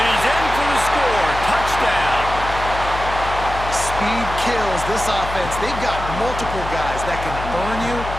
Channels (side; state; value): left; noise; hum, 8 dB below the sound